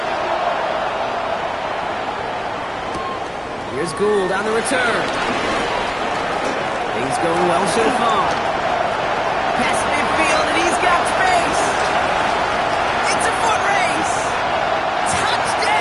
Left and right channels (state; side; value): identical; both; correlation 1.00